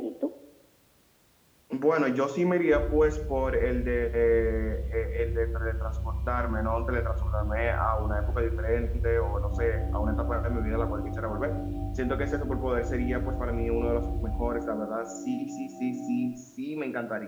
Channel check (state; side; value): identical; both; correlation 1.00